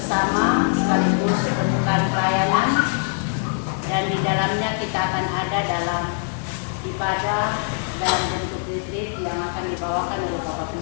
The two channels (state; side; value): silent; right; 63 dB below the other